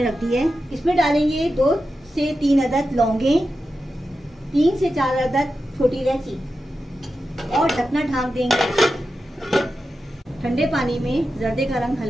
रख दी है। इसमें डालेंगे 2 से 3 अदद लौंगें, 3 से 4 अदद छोटी इलायची और ढकना ढाँक देंगे। ठंडे पानी में ज़र्दे का रंग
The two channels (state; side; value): normal; both; correlation 0.91